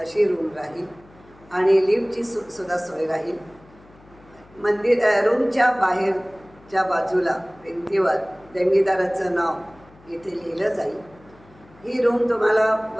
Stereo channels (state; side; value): noise; left; hum, 26 dB below the sound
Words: रूम राहील आणि लिफ्टची सुद्धा सोय राहील. रूमच्या बाहेरच्या बाजूला भिंतीवर देणगीदाराचं नाव इथे लिहिलं जाईल. ही रूम तुम्हाला